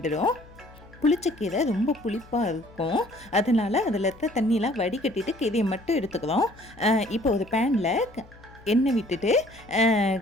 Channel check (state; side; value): noise; left; hum, 23 dB below the sound